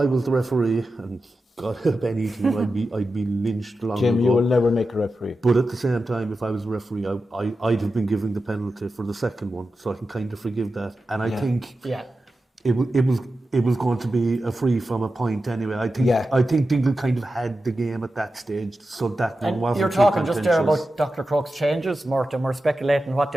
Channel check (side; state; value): both; normal; correlation 0.92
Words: was the referee, and God help any team, I'd be lynched long Jim, ago. you will never make a referee. But at the same time, if I was a referee, I'd have been giving the penalty for the second one, so I can kind of forgive that. And I think it was going to be a free from a point anyway. I think Dingle kind of had the game at that stage, so that one wasn't. You're talking just there about Dr. Crokes' changes, Mort, and we're speculating what